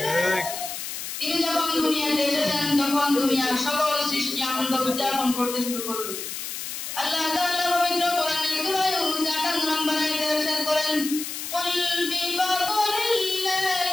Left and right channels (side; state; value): left; noise; hiss, 7 dB below the sound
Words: তিনি যখন দুনিয়াতে এসেছেন তখন দুনিয়ার সকল সৃষ্টি আনন্দ উদযাপন করতে শুরু করলো। আল্লাহ তাআলা পবিত্র কোরআনের সূরা ইউনূস 58 নম্বর আয়াতে ইরশাদ করেন, কুল বিফাদলিল্লাহি